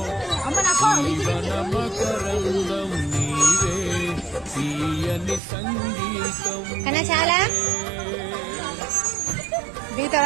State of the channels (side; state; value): left; drops out; at 5.4 s